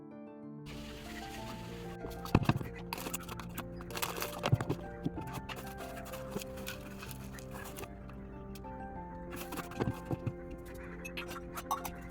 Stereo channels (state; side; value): identical; both; correlation 1.00